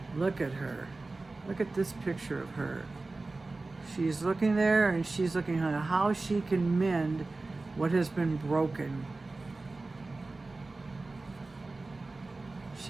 Look at her. Look at this picture of her. She's looking there and she's looking at how she can mend what has been broken.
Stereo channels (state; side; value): quieter; left; 3.4 dB